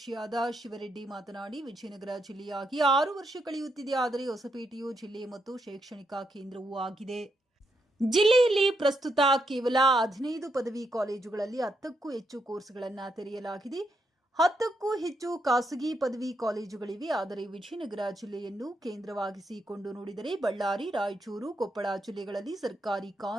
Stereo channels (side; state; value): both; normal; correlation 0.80